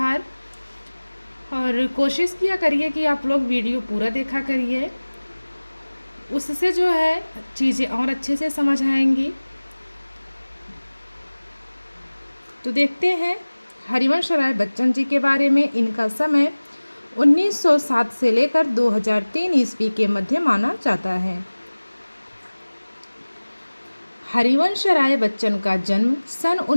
और कोशिश किया करिए कि आप लोग वीडियो पूरा देखा करिए, उससे जो है चीज़ें और अच्छे से समझ आएंगी। तो देखते हैं हरिवंश राय बच्चन जी के बारे में। इनका समय 1907 से लेकर 2003 ईस्वी के मध्य माना जाता है। हरिवंश राय बच्चन का जन्म सन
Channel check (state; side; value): inverted; both; correlation -1.00